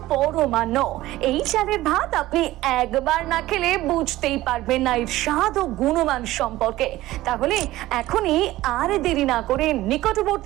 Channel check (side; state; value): left; quieter; 16.5 dB